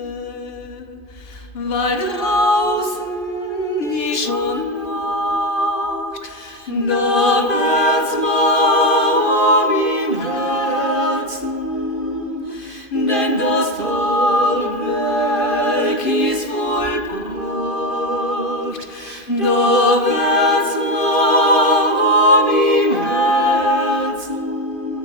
weil draußen die schon Nacht, da wird's warm im Herzen, denn das Tagwerk ist vollbracht, da wird's warm im Herzen,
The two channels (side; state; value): right; late; 2.5 ms